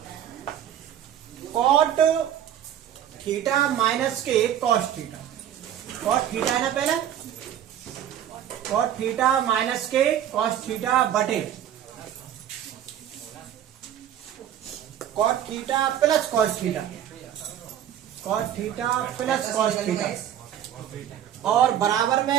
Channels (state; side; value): quieter; left; 10.4 dB